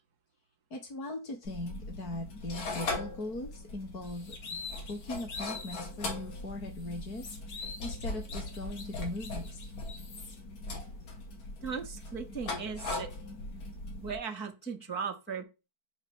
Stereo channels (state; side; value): late; right; 4.5 ms